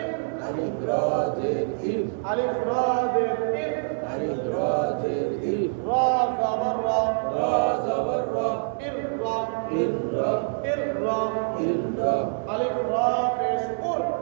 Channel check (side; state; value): left; silent; digital silence